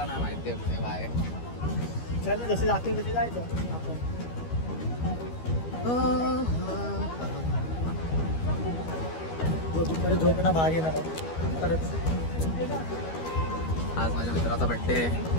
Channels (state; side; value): late; right; 12 ms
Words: नाही माहिती आहे कुठे बाय. चल जसे जातील तसे जायचं आपण. परत झोपणं भाग येणार परत. आज माझ्या मित्राचा बड्डे,